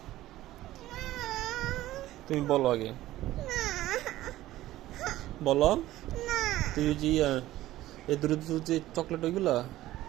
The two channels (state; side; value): quieter; left; 15.4 dB